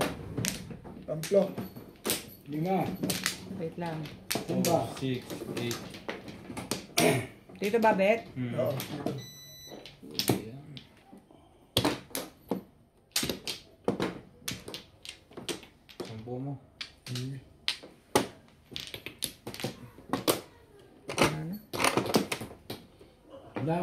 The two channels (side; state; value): both; identical; correlation 1.00